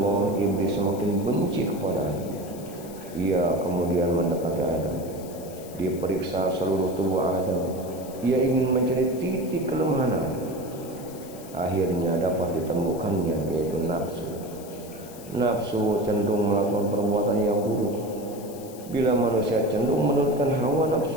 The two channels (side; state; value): left; noise; hiss, 18 dB below the sound